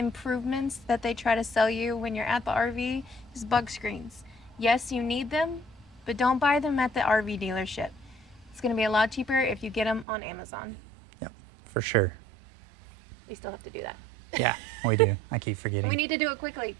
that they try to sell you when you're at the RV is bug screens. Yes, you need them, but don't buy them at the RV dealership. It's going to be a lot cheaper if you get them on Amazon. Yep, for sure. We still have to do that. Yeah, we do. I keep forgetting. We need to do it quickly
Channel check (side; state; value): left; drops out; at 10.1 s